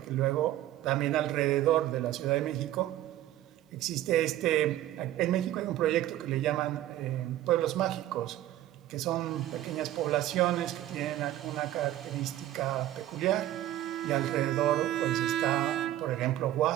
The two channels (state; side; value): quieter; left; 13.8 dB